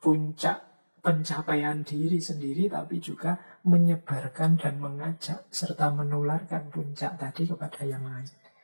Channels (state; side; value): inverted; both; correlation -1.00